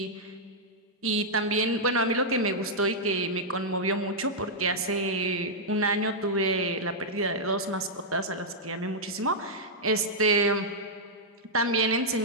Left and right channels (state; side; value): normal; both; correlation -0.07